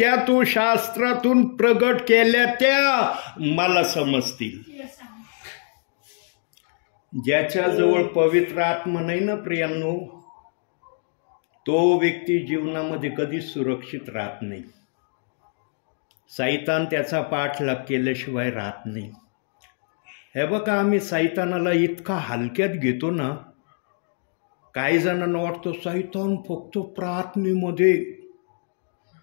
तू शास्त्रातून प्रगट केल्या त्या मला समजतील. ज्याच्याजवळ पवित्र आत्मा नाही ना प्रियांनो, तो व्यक्ती जीवनामध्ये कधीच सुरक्षित राहत नाही. सैतान त्याचा पाठलाग केल्याशिवाय राहत नाही. हे बघा, आम्ही सैतानाला इतका हलक्यात घेतो ना, काही जणांना वाटतं सैतान फक्त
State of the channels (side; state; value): right; silent; 63 dB below the other